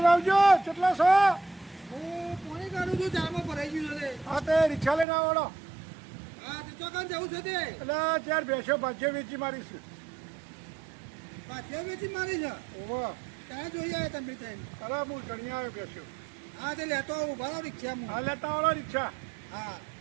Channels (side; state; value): left; drops out; at 5.1 s